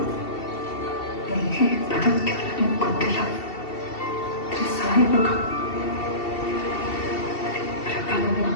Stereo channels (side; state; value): right; late; 2.7 ms